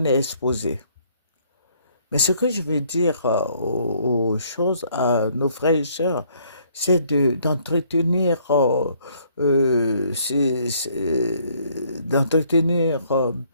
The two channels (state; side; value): inverted; both; correlation -0.64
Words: est exposé. Mais ce que je veux dire aux choses, à nos frères et sœurs, c'est d'entretenir d'entretenir